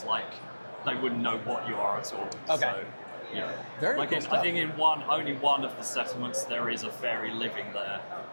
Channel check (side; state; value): both; inverted; correlation -1.00